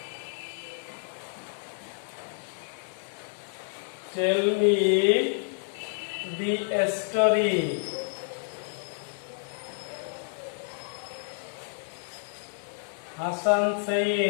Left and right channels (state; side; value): silent; right; 58 dB below the other